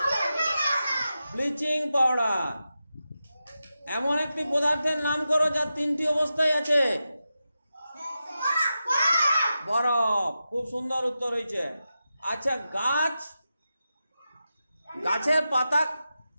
Bleaching powder. এমন একটি পদার্থের নাম করো যার তিনটি অবস্থায় আছে? বরফ। খুব সুন্দর উত্তর হয়েছে। আচ্ছা, গাছের পাতা,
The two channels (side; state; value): both; inverted; correlation -0.91